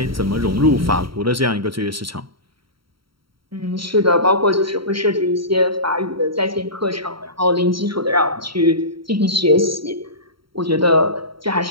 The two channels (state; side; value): late; left; 0.74 ms